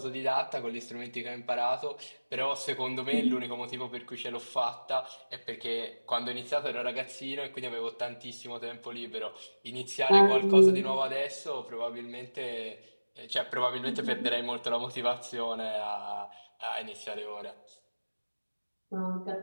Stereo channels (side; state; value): both; inverted; correlation -1.00